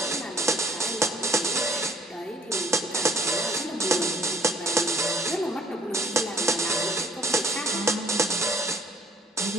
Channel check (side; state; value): both; normal; correlation 0.58